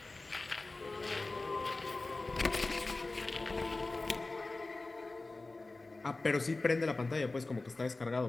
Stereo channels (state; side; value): quieter; right; 3.3 dB